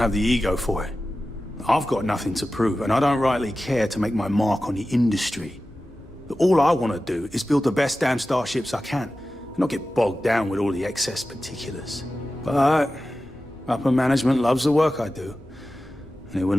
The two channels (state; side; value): normal; both; correlation 0.94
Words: the ego for it. I've got nothing to prove, and I don't rightly care to make my mark on the industry. All I want to do is build the best damn starships I can, and not get bogged down with all the excess particulars. But upper management loves the work I do, and they